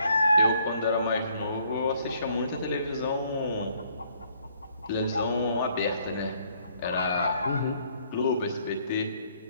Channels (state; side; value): inverted; both; correlation -0.65